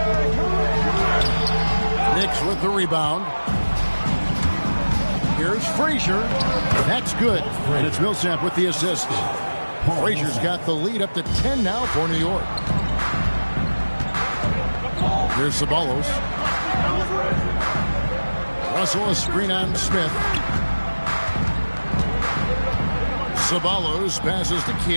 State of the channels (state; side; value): inverted; both; correlation -1.00